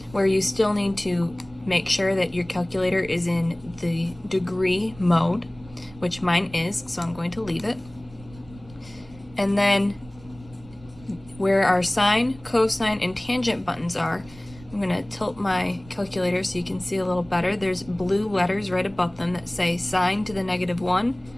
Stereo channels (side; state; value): right; noise; rumble, 22 dB below the sound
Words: where you still need to make sure that your calculator is in the degree mode, which mine is, so I'm going to leave it. And then where our sine, cosine, and tangent buttons are, I'm going to tilt my calculator so you can see a little better. There's blue letters right above them that say sine to the -1,